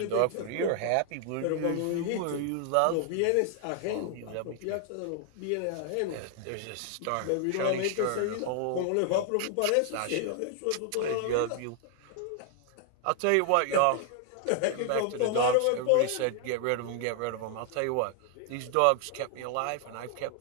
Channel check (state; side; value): different; both; correlation 0.00